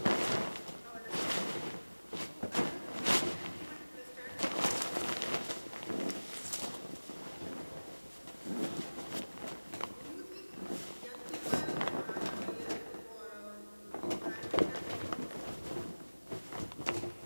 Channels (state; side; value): inverted; both; correlation -1.00